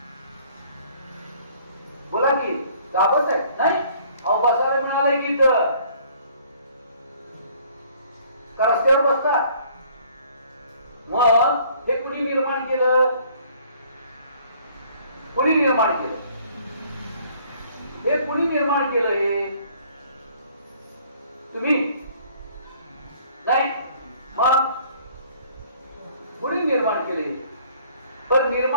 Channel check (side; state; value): both; inverted; correlation -0.58